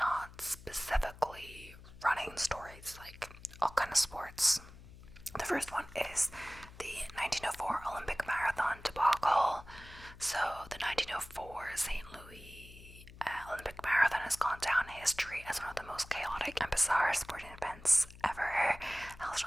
specifically running stories, like all kind of sports. The first one is the 1904 Olympic Marathon debacle. So the 1904 St. Louis Olympic Marathon has gone down in history as one of the most chaotic and bizarre sporting events ever. Held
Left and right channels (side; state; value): left; noise; hum, 18 dB below the sound